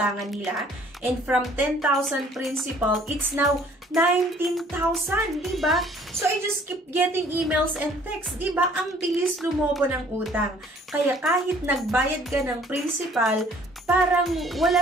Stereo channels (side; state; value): both; normal; correlation 0.57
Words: nila. And from 10,000 principal, it's now 19,000, diba? So, I just keep getting emails and texts, diba? Ang bilis lumobo ng utang. Kaya kahit nagbayad ka ng principal, parang